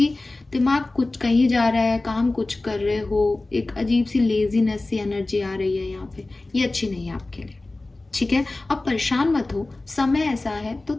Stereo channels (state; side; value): quieter; right; 3.0 dB